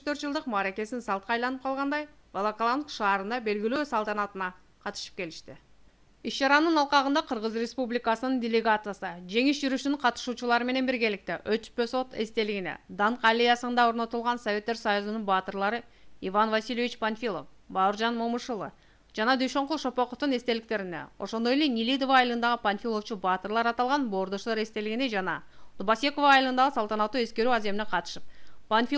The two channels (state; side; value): identical; both; correlation 1.00